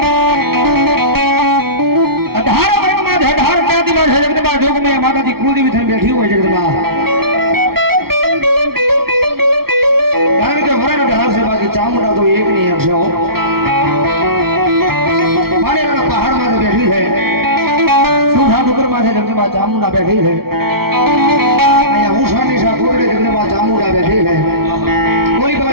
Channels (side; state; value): left; late; 0.94 ms